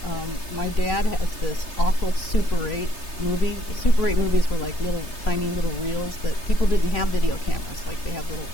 My dad has this awful Super 8 movie. Super 8 movies were like tiny little reels that people didn't have video cameras, like they had little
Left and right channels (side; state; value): right; late; 3.3 ms